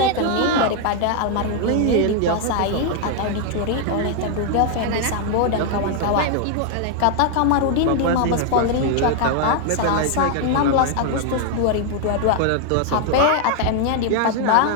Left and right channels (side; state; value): both; different; correlation 0.00